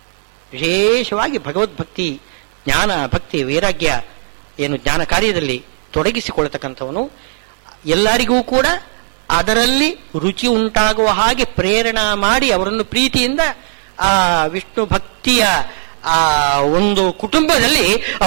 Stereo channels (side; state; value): left; silent; digital silence